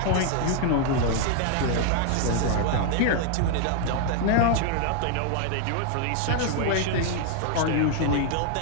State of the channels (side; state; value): both; different; correlation 0.00